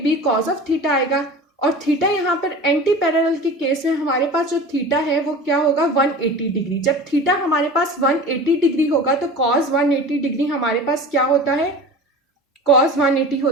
B cos of theta आएगा, और थीटा यहाँ पर एंटी पैरेलल के केस में हमारे पास जो थीटा है वो क्या होगा, 180 डिग्री। जब थीटा हमारे पास 180 डिग्री होगा तो कॉस 180 डिग्री हमारे पास क्या होता है, कॉस 180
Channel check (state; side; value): normal; both; correlation 0.36